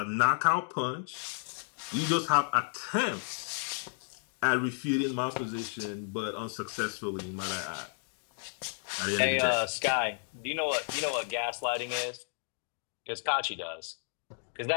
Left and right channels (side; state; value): right; silent; 56 dB below the other